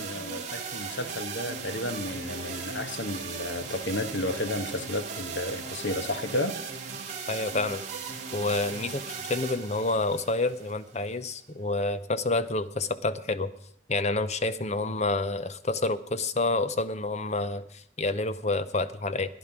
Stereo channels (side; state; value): both; normal; correlation 0.09